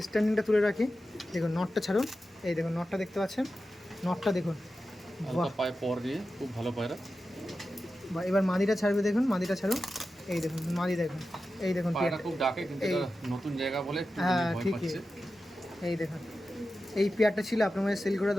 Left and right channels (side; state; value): both; normal; correlation 0.92